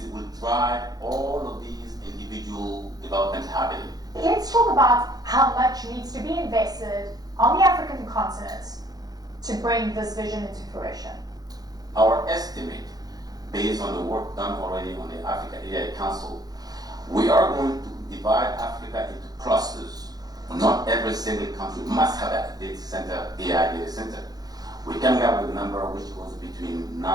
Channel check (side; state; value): left; late; 0.19 ms